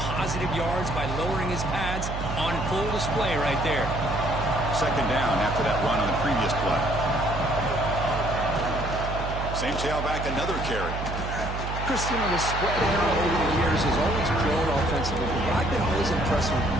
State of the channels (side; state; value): right; noise; hum, 5 dB below the sound